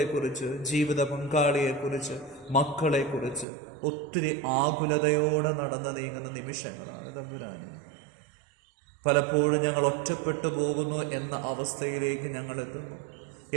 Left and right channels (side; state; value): left; drops out; at 3.5 s